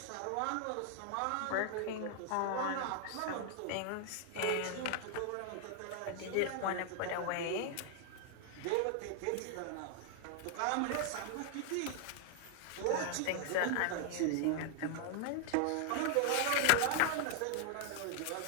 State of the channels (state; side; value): different; both; correlation 0.00